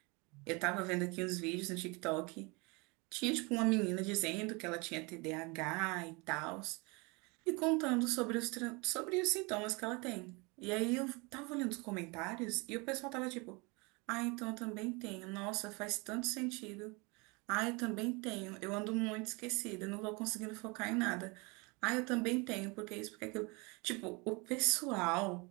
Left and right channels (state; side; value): quieter; left; 28.1 dB